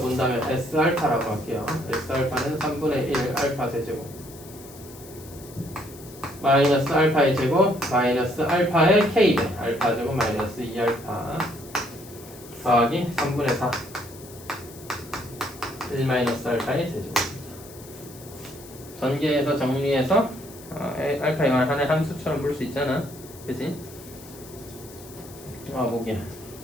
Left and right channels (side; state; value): left; noise; hiss, 19 dB below the sound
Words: S알파라고 할게요. S알파는 3분의 1 알파 세제곱 마이너스 알파의 제곱 마이너스 알파의 k배 알파 제곱 마이너스 2알파 더하기 3분의 4 1-알파의 세제곱입니다. 전개해서 정리해서 알파에 관한 하나의 함수처럼 볼 수 있잖아. 그치? 보기야.